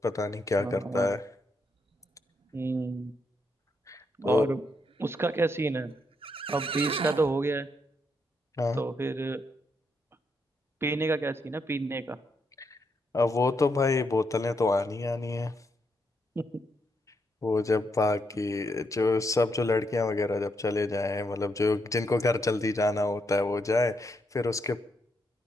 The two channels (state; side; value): normal; both; correlation 0.79